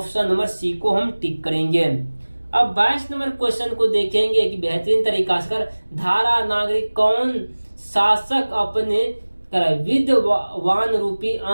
नंबर सी को हम टिक करेंगे। अब 22 नंबर क्वेश्चन को देखेंगे कि बेहतरीन तरीका से धारा नागरिक कौन शासक अपने विद्वान रूपी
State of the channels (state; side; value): inverted; both; correlation -1.00